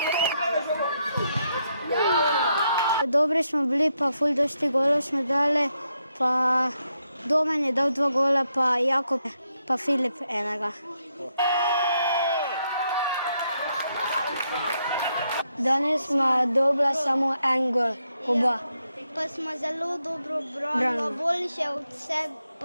Dobri smo bili, pa ful dosti golov smo dali, pa Domen je dal 2 gola, pa Jakob, pa Filip enega. Danes smo dobila samo 1 gol, oba. Pa smo zelo dobro branili, boljše od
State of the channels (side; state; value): both; inverted; correlation -0.80